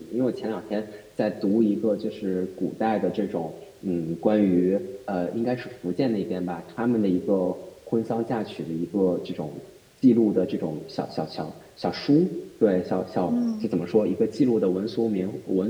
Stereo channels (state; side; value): identical; both; correlation 1.00